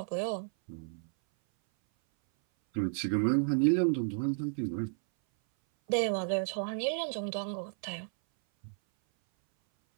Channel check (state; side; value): silent; left; 56 dB below the other